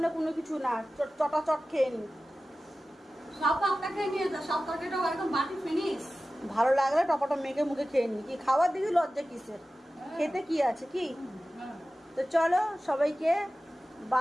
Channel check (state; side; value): normal; both; correlation 0.95